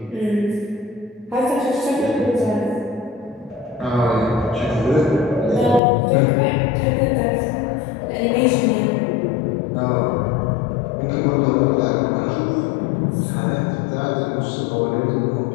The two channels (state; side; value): drops out; right; at 5.8 s